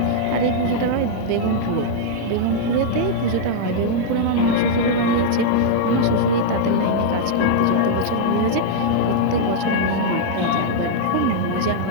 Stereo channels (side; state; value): both; different; correlation -0.02